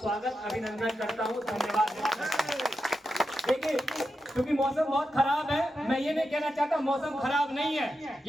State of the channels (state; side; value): normal; both; correlation 0.88